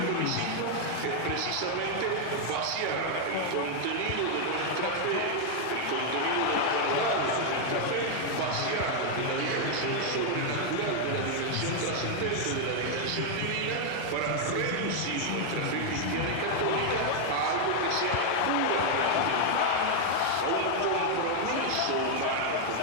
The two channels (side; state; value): both; different; correlation 0.00